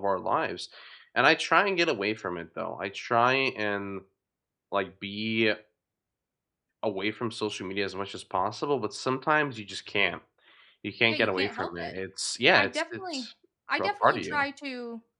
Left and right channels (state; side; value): identical; both; correlation 1.00